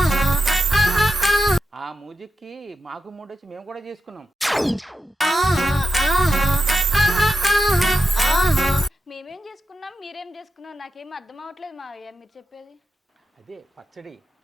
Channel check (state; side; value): normal; both; correlation 0.88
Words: ఆ మ్యూజిక్కి మాకు మూడు వచ్చి మేము కూడా చేసుకున్నాం. మేమేం చేసుకున్నాం, మీరేం చేసుకున్నాం, నాకేం అర్థం అవ్వట్లేదు మావయ్య మీరు చెప్పేది. అదే పచ్చడి.